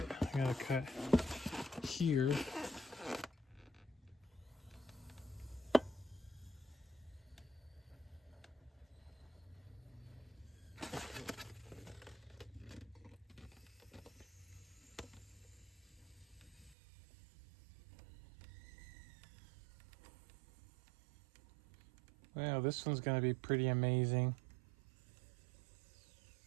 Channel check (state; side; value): drops out; left; at 16.8 s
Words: I gotta cut here. Wow, this one's gonna be pretty amazing.